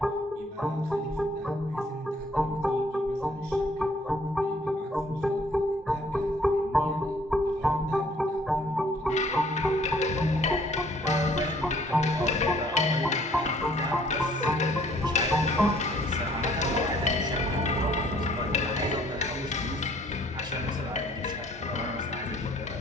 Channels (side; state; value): both; normal; correlation 0.61